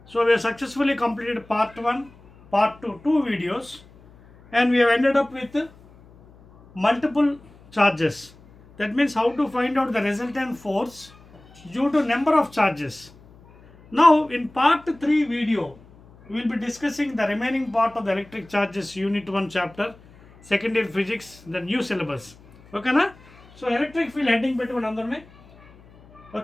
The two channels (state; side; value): noise; left; hum, 25 dB below the sound